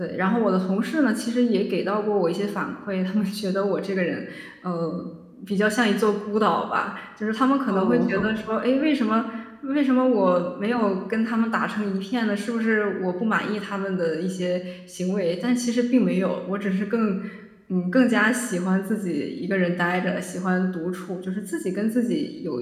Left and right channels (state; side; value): identical; both; correlation 1.00